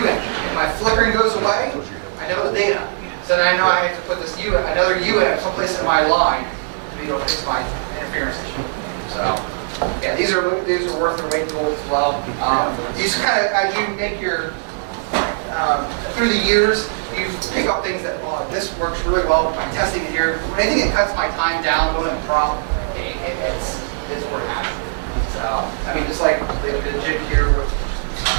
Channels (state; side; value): silent; left; digital silence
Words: If my flickering goes away, I know the data. So then I know I have to put this another UAMP someplace in my line to be able to fix my interference issue. So, yeah, these are worth their weight in gold as well. These kind of, as you make your, through the years, you pick up things that, oh, this works really well by testing it here. Anything that cuts my time down, going in prop, it's worth having. So, I mean, just like the jig here,